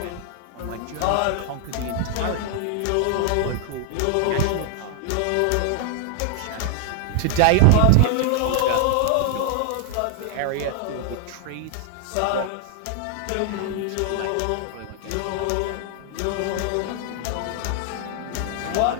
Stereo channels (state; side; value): different; both; correlation 0.00